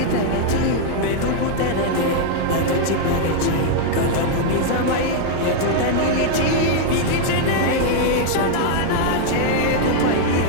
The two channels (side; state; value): both; different; correlation 0.00